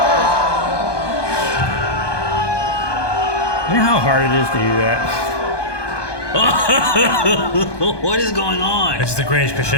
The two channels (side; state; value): right; late; 1.2 ms